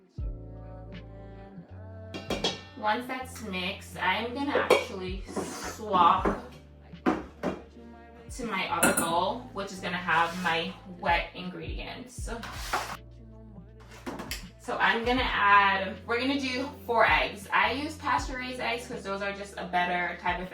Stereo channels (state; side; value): identical; both; correlation 1.00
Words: Once that's mixed, I'm going to actually swap to my other bowl, which is going to have my wet ingredients. So I'm gonna add, we're gonna do 4 eggs. I use pasture-raised eggs because those are just a better type of